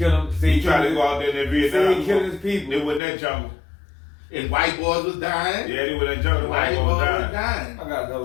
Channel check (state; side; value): drops out; right; at 3.0 s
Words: them, He tried to go out there in that Vietnam. Say killing his people. They were in that jungle. And white boys was dying. Yeah, they were in that jungle. White White boys boys was dying. dying. I got another